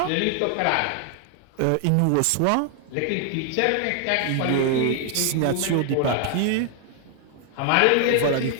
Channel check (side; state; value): both; different; correlation 0.00